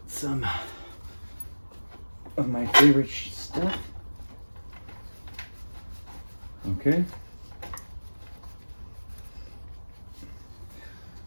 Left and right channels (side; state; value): both; inverted; correlation -1.00